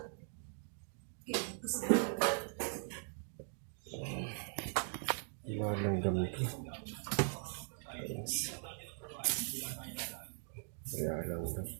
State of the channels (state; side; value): silent; left; 51 dB below the other